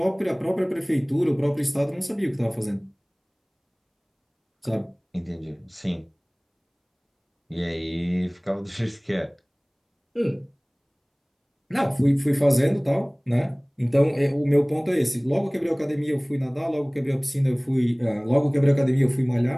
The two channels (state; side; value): identical; both; correlation 1.00